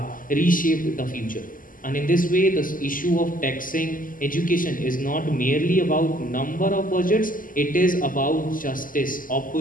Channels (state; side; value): late; right; 0.40 ms